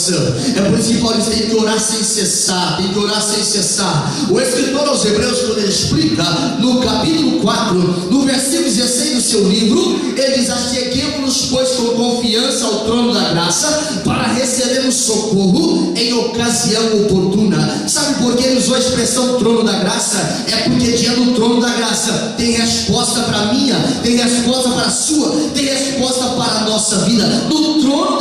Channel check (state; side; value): identical; both; correlation 1.00